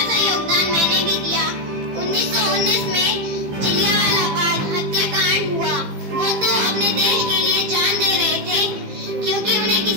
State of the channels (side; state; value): left; late; 15 ms